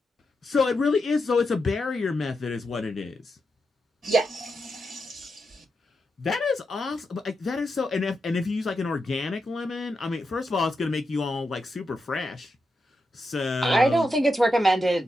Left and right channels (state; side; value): normal; both; correlation 0.86